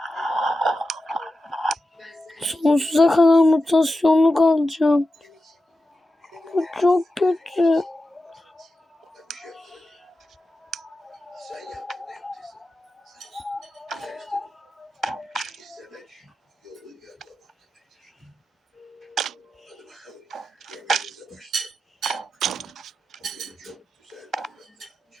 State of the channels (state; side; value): normal; both; correlation 0.91